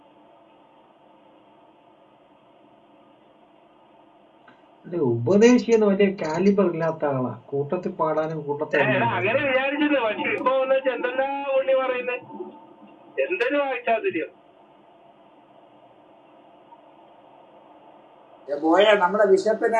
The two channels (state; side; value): identical; both; correlation 1.00